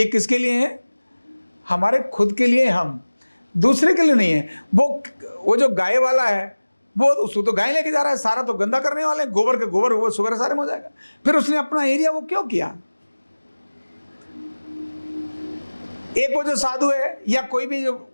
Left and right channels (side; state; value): both; inverted; correlation -1.00